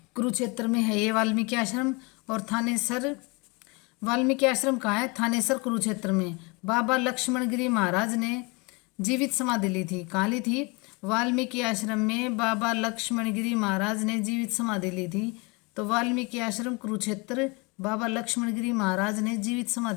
कुरुक्षेत्र में है ये वाल्मीकि आश्रम। और थानेसर वाल्मीकि आश्रम कहाँ है? थानेसर कुरुक्षेत्र में। बाबा लक्ष्मण गिरी महाराज ने जीवित समाधि ली थी। कहाँ ली थी? वाल्मीकि आश्रम में बाबा लक्ष्मण गिरी महाराज ने जीवित समाधि ली थी। तो वाल्मीकि आश्रम कुरुक्षेत्र, बाबा लक्ष्मण गिरी महाराज ने जीवित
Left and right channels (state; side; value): quieter; right; 28.3 dB